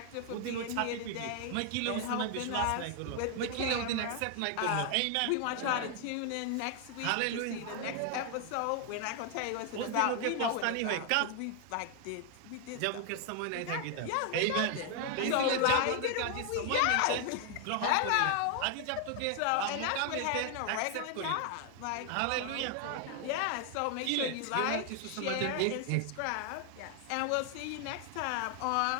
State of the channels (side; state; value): both; different; correlation 0.00